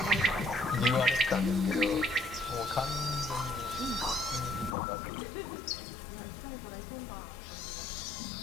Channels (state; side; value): drops out; right; at 4.8 s